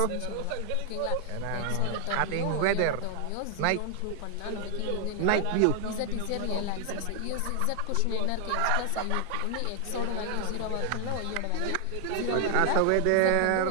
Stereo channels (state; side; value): different; both; correlation 0.00